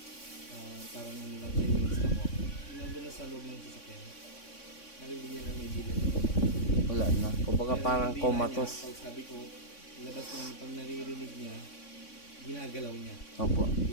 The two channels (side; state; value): right; late; 3.6 ms